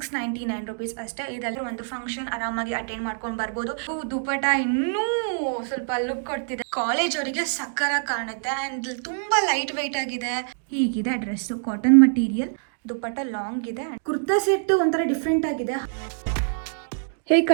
ರುಪೀಸ್ ಅಷ್ಟೇ. ಇದೆಲ್ಲ ಒಂದು ಫಂಕ್ಷನ್ ಆರಾಮಾಗಿ ಅಟೆಂಡ್ ಮಾಡ್ಕೊಂಡು ಬರ್ಬೋದು. ದುಪಟ ಇನ್ನೂ ಸ್ವಲ್ಪ ಲುಕ್ ಕೊಡ್ತಿದೆ. ಕಾಲೇಜ್ ಅವರಿಗೆ ಸಕ್ಕರ ಕಾಣುತ್ತೆ ಅಂಡ್ ತುಂಬಾ ಲೈಟ್ ವೆಯ್ಟ್ ಆಗಿದೆ. ಹೀಗಿದೆ dress, cotton material, dupatta long ಇದೆ. ಕುರ್ತಾ ಸೆಟ್ ಒಂಥರ ಡಿಫ್ರೆಂಟ್ ಆಗಿದೆ. ಹೇಗೆ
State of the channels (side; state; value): left; silent; digital silence